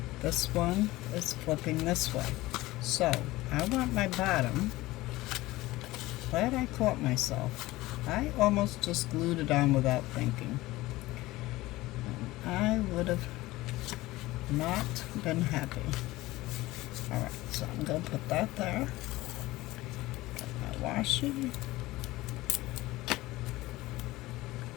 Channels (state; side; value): quieter; right; 18.6 dB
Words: This one is flipping this way. So, I want my bottom. Glad I caught myself. I almost just glued it on without thinking. And I would have not been happy. Alright, so I'm going to put that there. Get my washi.